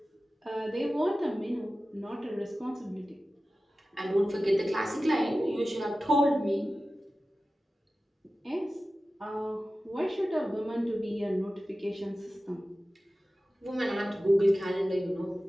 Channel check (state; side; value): normal; both; correlation 0.95